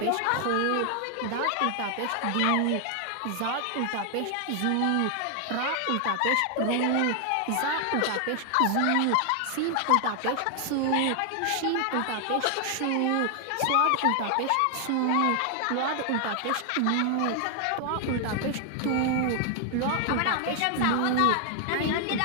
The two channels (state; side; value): different; both; correlation 0.00